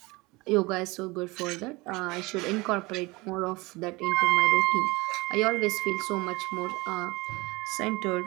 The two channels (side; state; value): left; quieter; 23.2 dB